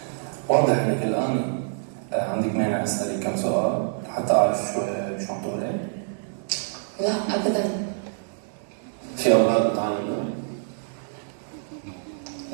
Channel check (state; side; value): silent; left; digital silence